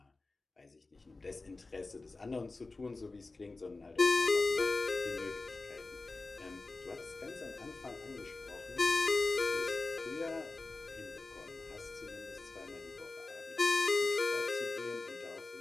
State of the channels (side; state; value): right; quieter; 3.5 dB